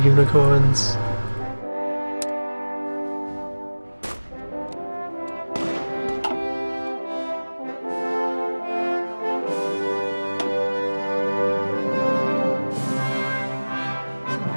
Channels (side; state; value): both; inverted; correlation -1.00